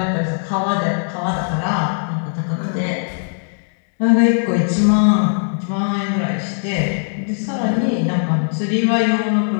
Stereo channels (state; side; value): silent; right; digital silence